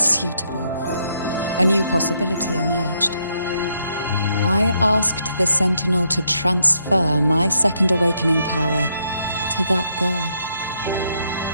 A new possibility emerged. I asked the Sentinel to transfer my second awakening power to that girl.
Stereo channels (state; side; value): inverted; both; correlation -0.75